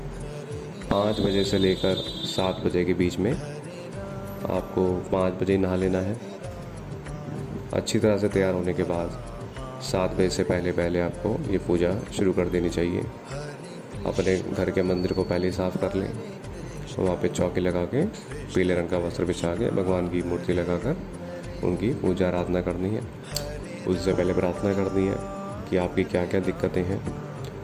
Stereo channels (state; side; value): identical; both; correlation 1.00